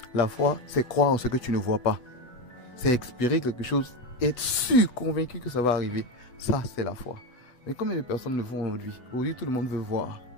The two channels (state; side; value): late; right; 8.6 ms